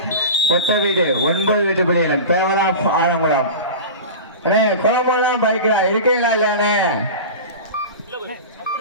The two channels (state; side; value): inverted; both; correlation -0.31